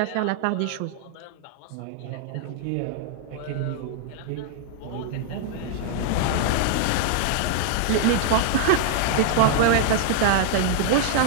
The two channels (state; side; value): different; both; correlation 0.00